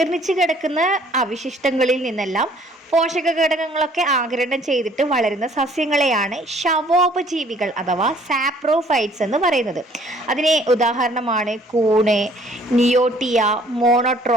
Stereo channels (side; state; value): both; normal; correlation 0.58